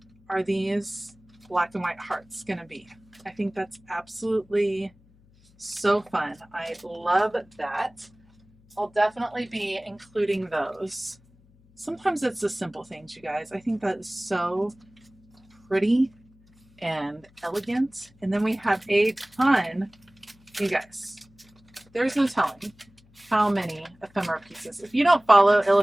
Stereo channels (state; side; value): noise; left; hum, 29 dB below the sound